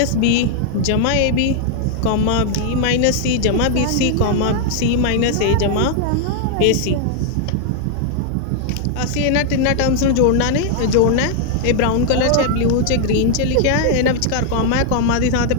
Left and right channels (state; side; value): different; both; correlation 0.00